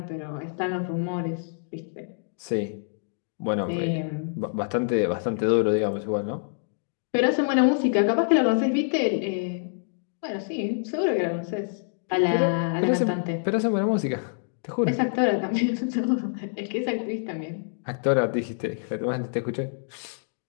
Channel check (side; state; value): right; silent; digital silence